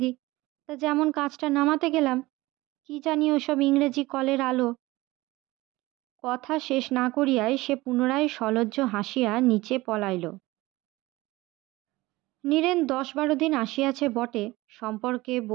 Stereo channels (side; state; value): left; quieter; 19.7 dB